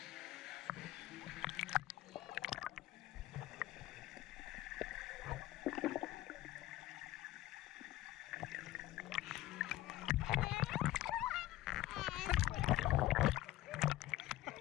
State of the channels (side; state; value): right; quieter; 15.5 dB